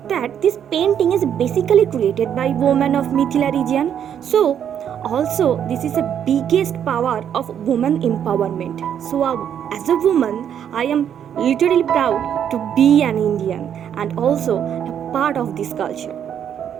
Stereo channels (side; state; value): left; quieter; 9.1 dB